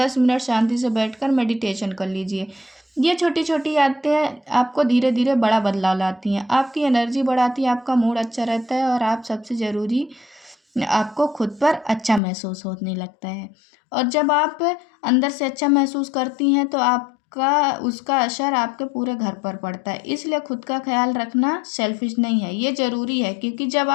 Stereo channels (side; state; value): right; drops out; at 12.2 s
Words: मिनट शांति से बैठकर मेडिटेशन कर लीजिए। ये छोटी-छोटी आदतें आपको धीरे-धीरे बड़ा बदलाव लाती हैं, आपकी एनर्जी बढ़ाती है, आपका मूड अच्छा रहता है, और आप सबसे ज़रूरी, आपको खुद पर अच्छा महसूस होने लगता है। और जब आप अंदर से अच्छा महसूस करती हैं तो आपका उसका असर आपके पूरे घर पर पड़ता है। इसलिए खुद का ख़्याल रखना सेल्फ़िश नहीं है, ये ज़रूरी है, क्योंकि जब